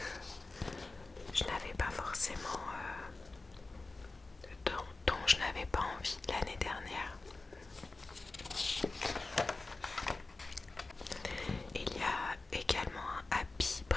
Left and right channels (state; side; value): quieter; right; 3.4 dB